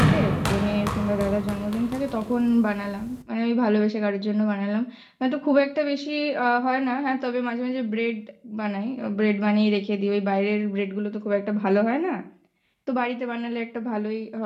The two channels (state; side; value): identical; both; correlation 1.00